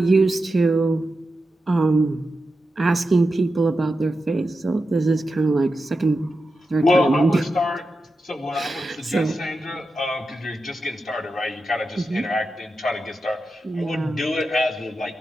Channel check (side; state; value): both; normal; correlation 0.90